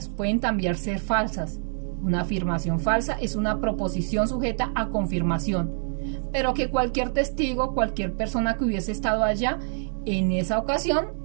pueden también ser falsas. Una afirmación falsa es una proposición sujeta a confirmación, pero que cualquier testigo, cualquier persona que hubiese estado allá en esa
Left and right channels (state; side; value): silent; left; digital silence